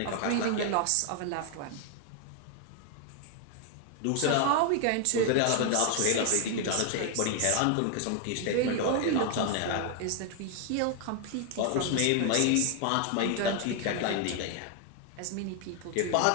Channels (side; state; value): both; different; correlation 0.00